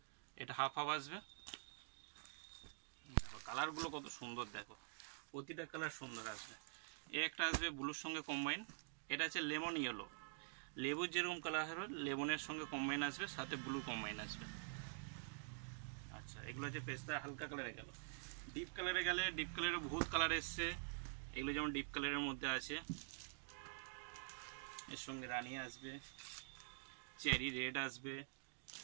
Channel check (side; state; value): left; silent; digital silence